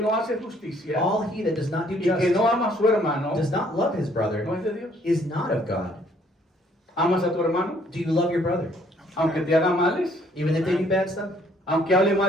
hace justicia All he that does not do y que justice, no ama a su hermano, does not love his no brother, es de Dios. is not of God. ¿Amas a tu hermano? Do you love your brother? Aunque te haga males, Even if they do bad stuff? aunque hable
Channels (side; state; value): both; normal; correlation 0.63